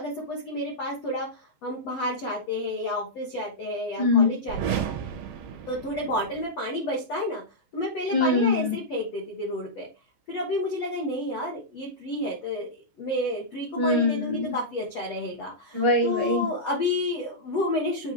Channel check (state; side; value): normal; both; correlation -0.11